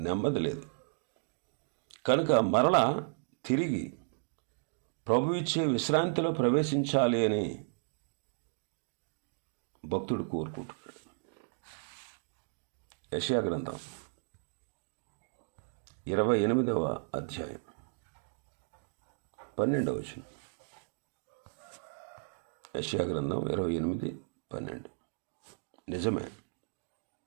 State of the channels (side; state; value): left; silent; digital silence